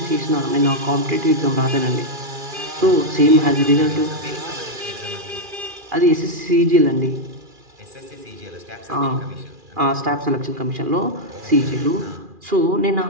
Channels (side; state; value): left; late; 2.4 ms